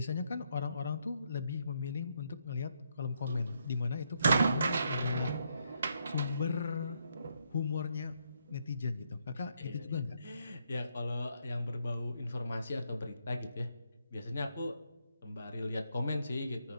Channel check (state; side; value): inverted; both; correlation -0.76